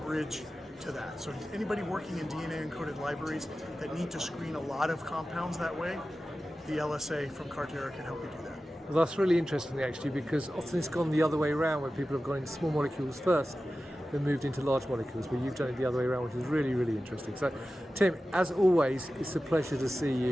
to that. So anybody working in DNA encoded libraries that need to screen a lot of compounds that way, the LSA from Carterra can help you do that. Well, that's really interesting actually, because often it's gone the other way around, where people have gone into small molecules first, then moved into large molecules, but you've done it the other way around, which is really, really interesting. So Tim, as always, it's a pleasure to see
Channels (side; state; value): both; normal; correlation 0.94